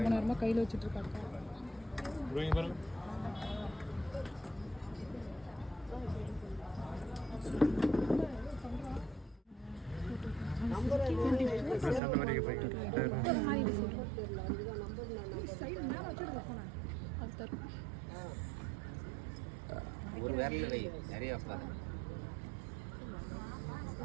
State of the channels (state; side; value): drops out; left; at 12.0 s